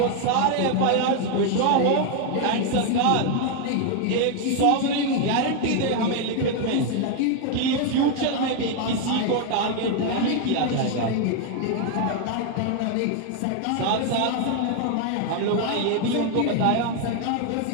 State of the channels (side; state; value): both; different; correlation 0.01